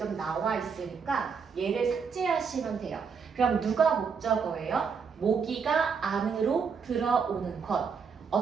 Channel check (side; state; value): left; quieter; 5.9 dB